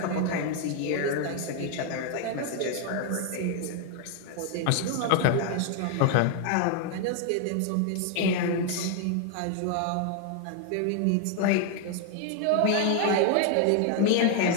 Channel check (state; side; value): different; both; correlation 0.00